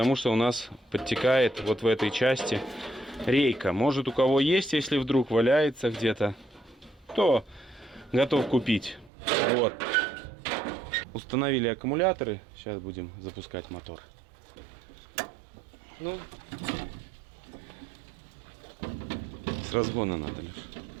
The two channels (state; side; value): drops out; left; at 9.1 s